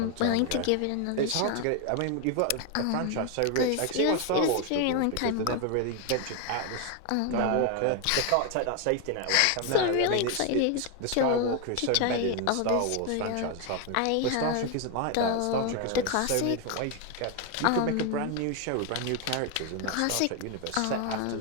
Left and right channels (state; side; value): different; both; correlation 0.01